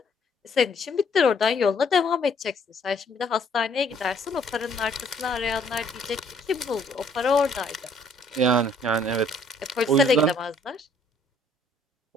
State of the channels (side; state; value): both; normal; correlation 0.63